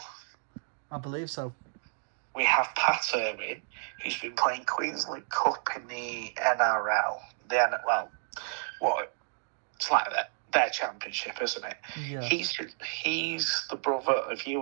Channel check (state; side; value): silent; left; digital silence